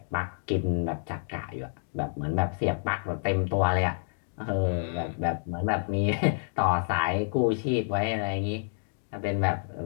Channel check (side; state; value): right; silent; digital silence